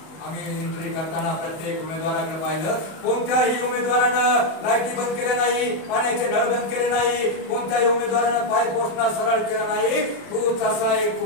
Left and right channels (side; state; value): right; late; 31 ms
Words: आम्ही एंट्री करताना प्रत्येक उमेदवाराकडे पाहिलं. कोणत्याही उमेदवारानं लाईटी बंद केल्या नाही, पाण्याचे नळ बंद केले नाही, कोणत्याही उमेदवारानं पाय पोचणं सरळ केलं नाही. तूच असा एक